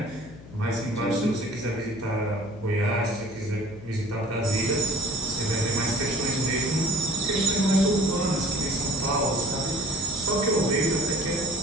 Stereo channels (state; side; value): noise; left; hum, 18 dB below the sound